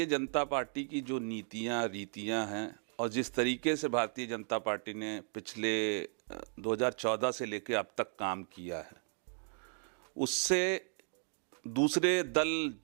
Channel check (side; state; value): left; silent; 54 dB below the other